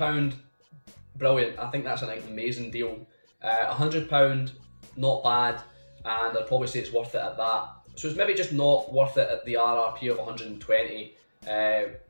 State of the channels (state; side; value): inverted; both; correlation -1.00